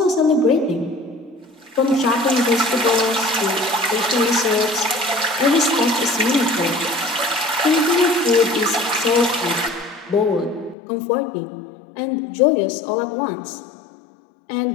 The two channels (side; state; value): right; drops out; at 10.8 s